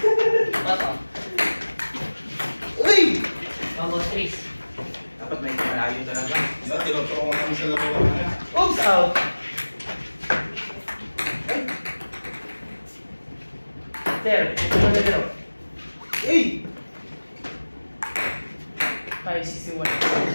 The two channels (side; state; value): both; inverted; correlation -1.00